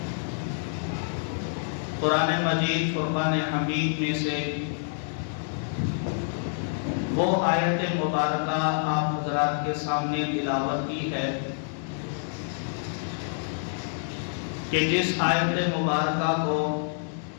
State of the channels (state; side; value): silent; right; digital silence